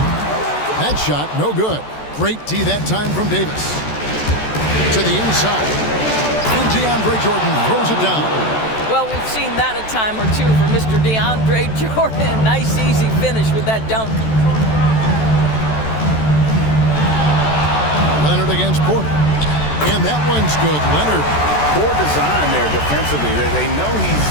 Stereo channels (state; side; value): late; right; 14 ms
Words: That shot, no good. Great D that time from Davis. To the inside. And DeAndre Jordan throws it down. Well, we've seen that a time or two for Mr. DeAndre Jordan. Nice, easy finish with that dunk. Leonard against Porter. And that one's good. Leonard. Poor design there defensively. They know he's